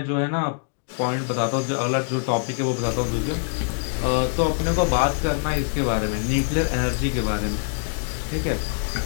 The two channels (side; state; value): right; silent; 60 dB below the other